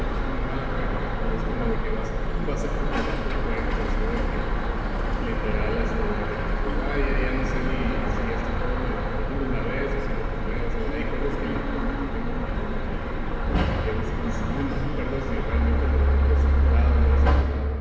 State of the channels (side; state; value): both; identical; correlation 1.00